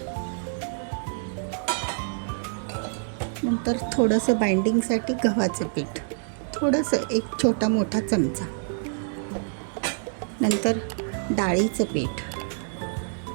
नंतर थोडंसं बाइंडिंगसाठी गव्हाचं पीठ, थोडंसं 1 छोटा मोठा चमचा, नंतर डाळीचं पीठ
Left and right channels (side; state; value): left; silent; digital silence